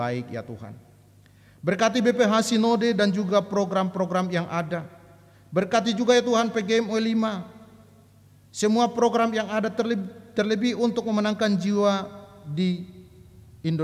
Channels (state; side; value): identical; both; correlation 1.00